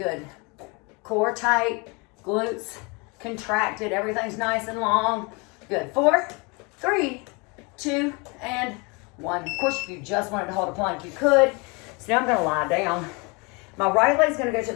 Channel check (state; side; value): quieter; right; 29.4 dB